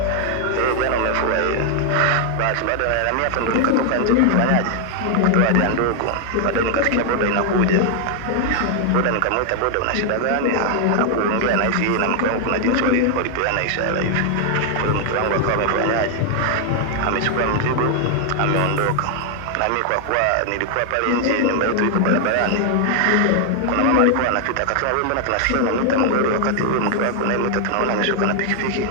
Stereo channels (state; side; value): different; both; correlation 0.00